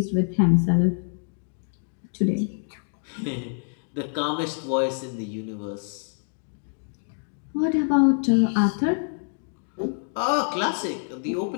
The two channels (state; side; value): silent; right; 61 dB below the other